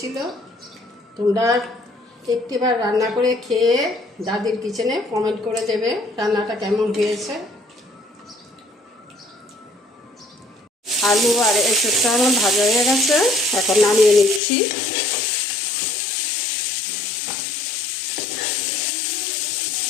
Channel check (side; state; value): right; drops out; at 14.4 s